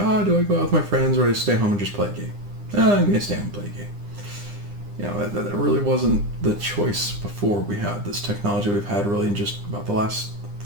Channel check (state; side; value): late; left; 9.9 ms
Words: do I go out with my friends or do I stay home and just play a game? I'm going to stay home and play a game. That really wasn't the choice before we had this technology we've had really in just about the last